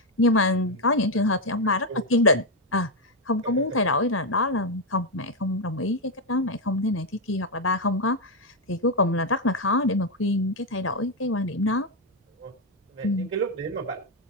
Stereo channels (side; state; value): both; normal; correlation 0.04